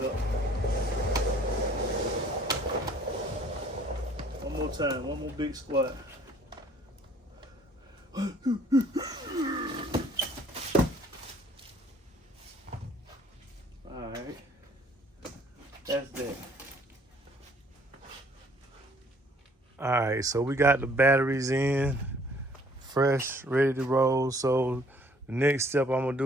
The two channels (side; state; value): both; normal; correlation 0.58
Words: up. One more time, one more big squat. Alright. That's that. Alright, so we got the batteries in, fresh, ready to roll. So the next step I'm gonna